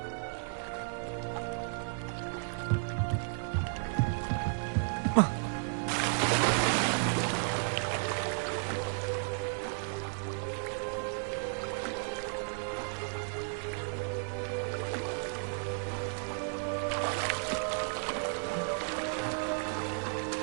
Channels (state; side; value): silent; left; 55 dB below the other